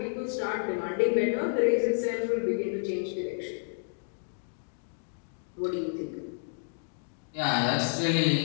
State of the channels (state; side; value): silent; right; digital silence